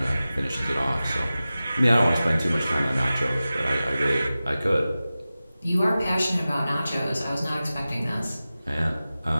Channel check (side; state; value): both; inverted; correlation -0.96